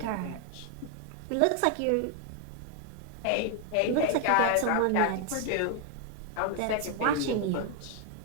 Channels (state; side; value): different; both; correlation 0.01